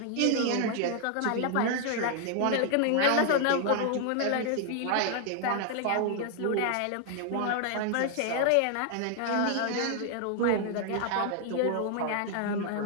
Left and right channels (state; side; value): different; both; correlation 0.00